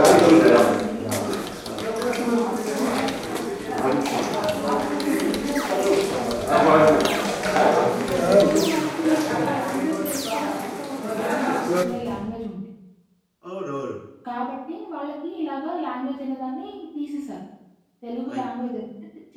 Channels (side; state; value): both; identical; correlation 1.00